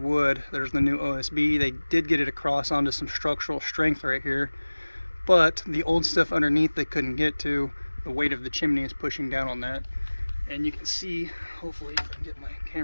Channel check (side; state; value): both; inverted; correlation -1.00